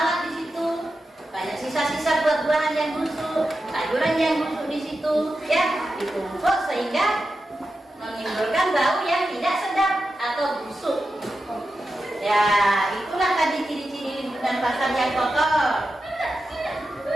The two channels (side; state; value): both; normal; correlation 0.90